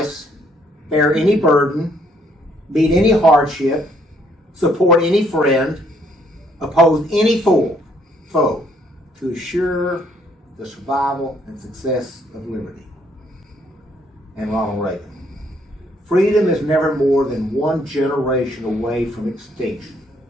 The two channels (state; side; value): normal; both; correlation 0.67